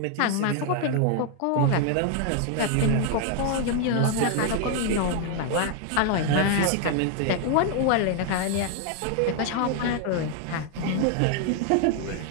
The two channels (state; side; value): different; both; correlation 0.00